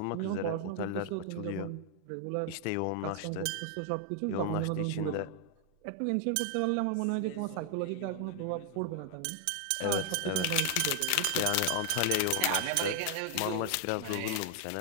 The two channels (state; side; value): different; both; correlation 0.00